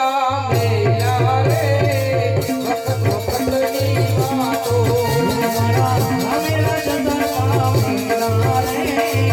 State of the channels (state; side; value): identical; both; correlation 1.00